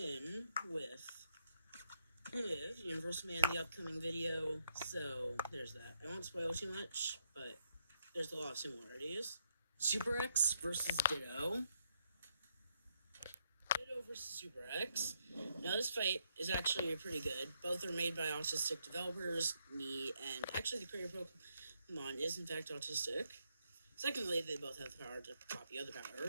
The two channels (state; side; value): inverted; both; correlation -0.76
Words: with Universal Man in the upcoming video, so there's that. I won't spoil too much, but there's a lot of similarities. Super X versus Ditto. Ditto versus Super X. Now, this fight is actually pretty good. Both are made by autistic developers, me, and actually the creator of Pokemon is in fact autistic. Secondly, they both have the power to copy other